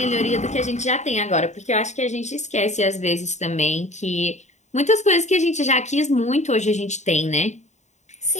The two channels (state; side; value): late; right; 0.34 ms